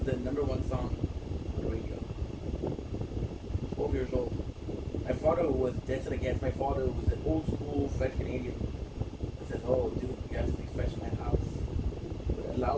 the #1 song on the radio. 12 years old. My father was dancing against. My father was an old school French Canadian. I said, "Oh, dude, you have to speak French in my house." But allow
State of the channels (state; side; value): identical; both; correlation 1.00